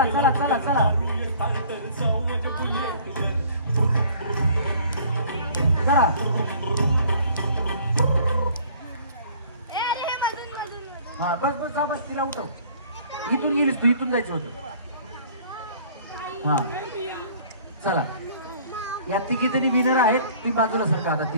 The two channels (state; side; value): inverted; both; correlation -0.52